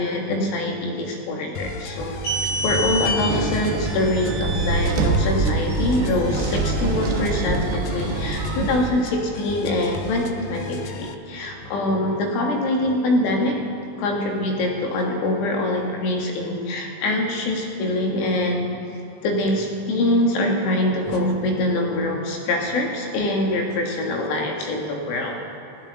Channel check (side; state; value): right; late; 20 ms